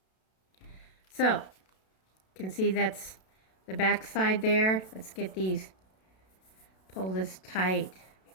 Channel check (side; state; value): right; late; 32 ms